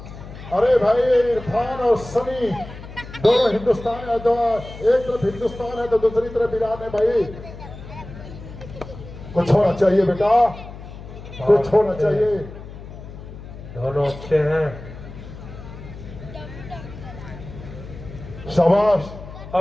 अरे भाई इरफान और सनी दोनों हिंदुस्तान है, तो एक तरफ हिंदुस्तान है तो दूसरी तरफ ईरान है। भाई कुछ होना चाहिए बेटा, कुछ होना चाहिए। दोनों अच्छे हैं। शाबाश।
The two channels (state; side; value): noise; left; hum, 14 dB below the sound